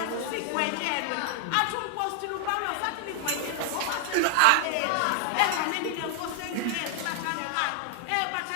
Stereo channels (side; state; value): both; different; correlation 0.00